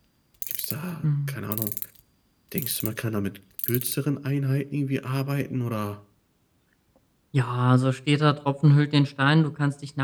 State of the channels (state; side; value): identical; both; correlation 1.00